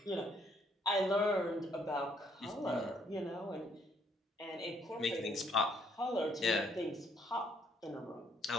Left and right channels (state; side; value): normal; both; correlation 0.68